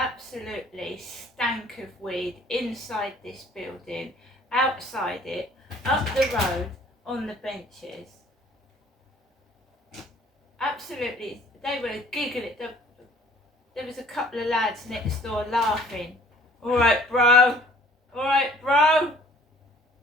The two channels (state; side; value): normal; both; correlation 0.54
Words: stank of weed inside this building, outside it, up the road, on the benches. Absolutely, they were giggling. There was a couple of lads next door laughing. Alright bro, alright bro.